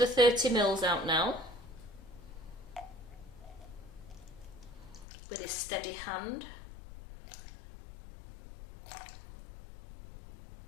30 mils out now with a steady hand.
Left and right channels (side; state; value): right; drops out; at 5.1 s